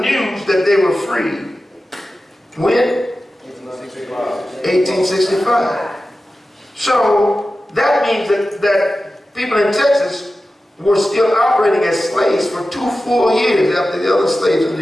news that they were free when? 1865. So that means that people in Texas were still operating as slaves for 2 full years after the other slaves in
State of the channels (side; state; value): both; normal; correlation 0.94